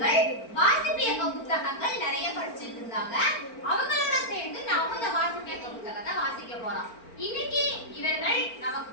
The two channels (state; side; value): late; right; 4.4 ms